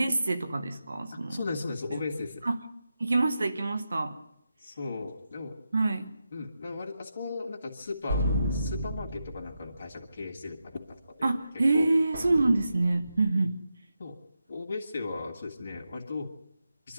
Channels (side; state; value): both; inverted; correlation -0.88